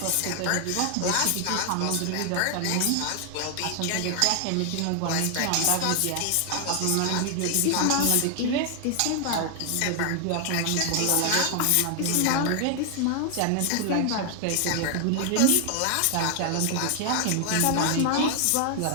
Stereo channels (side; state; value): both; different; correlation 0.00